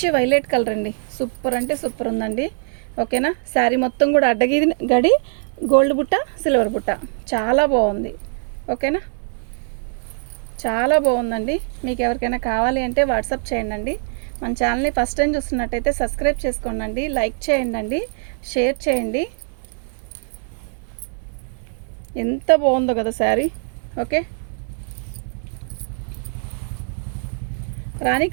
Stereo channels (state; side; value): silent; left; 64 dB below the other